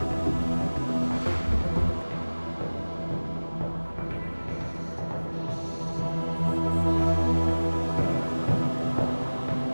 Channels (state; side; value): inverted; both; correlation -1.00